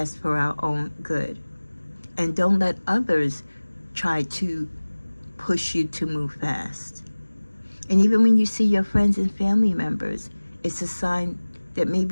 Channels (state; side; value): inverted; both; correlation -1.00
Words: for our own good. And don't let others try to push you to move fast. And even when you see your friends and family members, it's a sign that